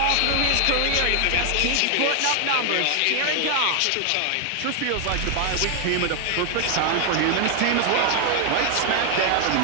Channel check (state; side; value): different; both; correlation 0.00